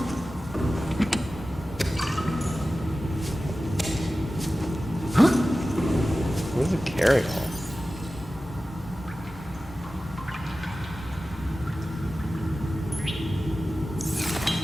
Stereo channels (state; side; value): normal; both; correlation 0.95